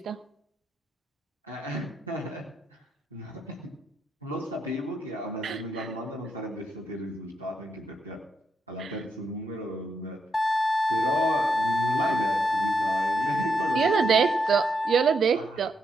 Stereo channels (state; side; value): normal; both; correlation 0.80